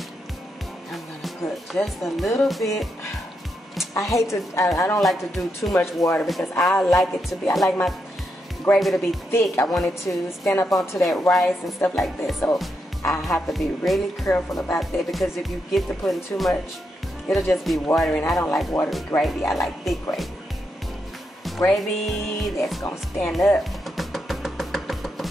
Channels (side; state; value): both; normal; correlation 0.82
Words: I'm gonna put just a little bit. I don't like to do too much water because I like it to be, I like my gravy to be thick. I want it to stand up onto that rice and stuff like that. So I have to be really careful about that, because if you get to putting too much, it'll just be watery, and I don't like watery gravy. I like thick gravy. Gravy that's gonna stand up